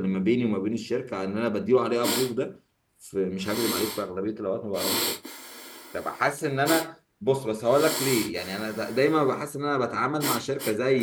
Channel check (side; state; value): both; identical; correlation 1.00